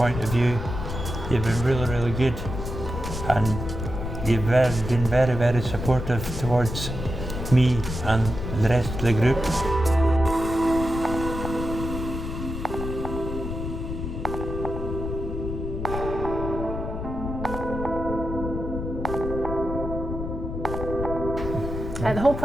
of view, you've been really good, and you've been very supportive towards me and the rest of the group. The whole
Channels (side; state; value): left; noise; rumble, 6 dB below the sound